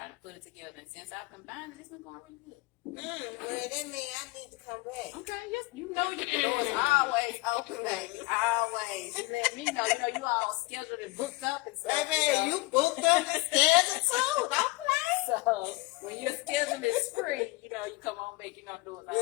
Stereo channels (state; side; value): quieter; right; 22.7 dB